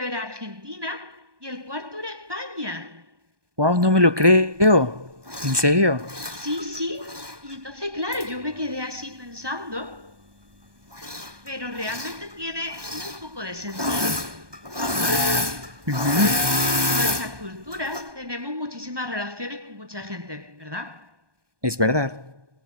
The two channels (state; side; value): late; left; 1.2 ms